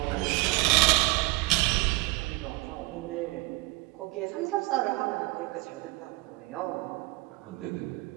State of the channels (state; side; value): quieter; left; 22.5 dB